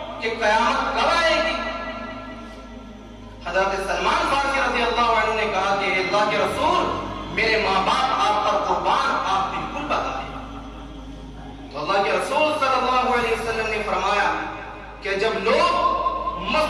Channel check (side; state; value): both; identical; correlation 1.00